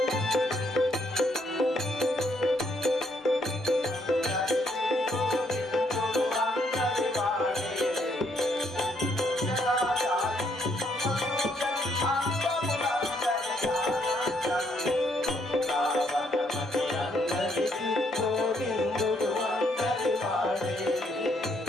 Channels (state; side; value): normal; both; correlation 0.72